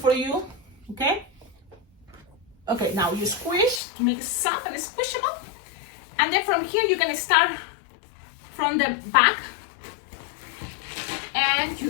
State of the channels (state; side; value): drops out; right; at 3.8 s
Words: you, okay? Okay, now you squish to make it soft and squishable. And then from here, you're gonna start from the back. And